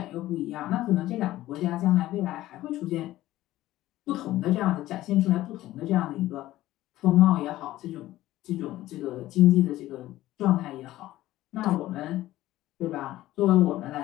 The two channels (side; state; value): right; quieter; 15.4 dB